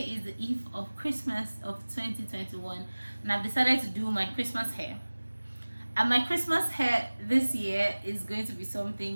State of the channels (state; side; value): inverted; both; correlation -1.00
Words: the eve of Christmas of 2021, and I've decided to do my Christmas hair. And my Christmas hair this year is going to be